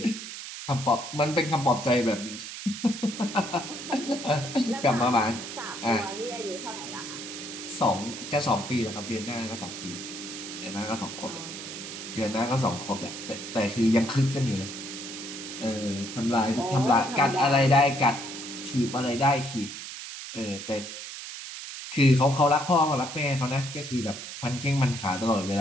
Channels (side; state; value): right; noise; hiss, 9 dB below the sound